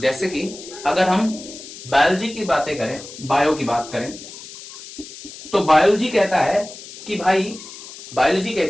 कि अगर हम बायोलॉजी की बातें करें, बायो की बात करें, तो बायोलॉजी कहता है कि भाई, बायोलॉजी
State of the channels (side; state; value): left; noise; hiss, 15 dB below the sound